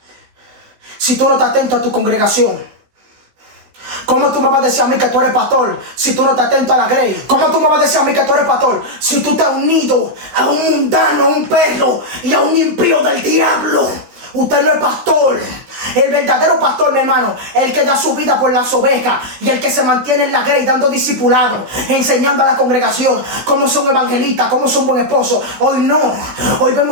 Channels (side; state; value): left; late; 16 ms